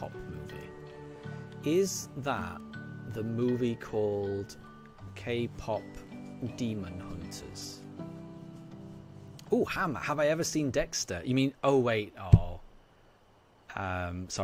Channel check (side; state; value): both; identical; correlation 1.00